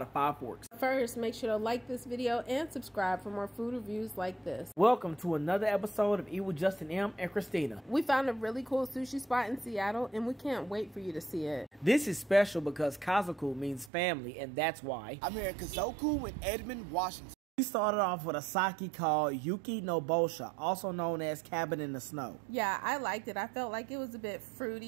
5 forks. First, make sure to like this video and subscribe for more food reviews like this. Welcome to another episode of Eat with Justin M and Christina. We found a really cool sushi spot in Seattle and we can't wait for you to see it. This is special because Kazoku means family, and that's why I'm here at Kazoku in Edmond, Washington. we started off with a sake called Yuki no Bosha, also known as Cabin in the Snow. Yeah, I liked it. I felt like it was a bit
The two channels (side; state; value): left; drops out; at 13.9 s